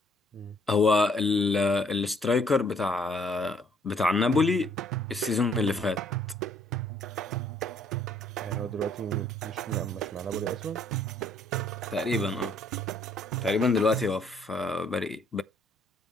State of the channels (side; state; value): both; normal; correlation 0.64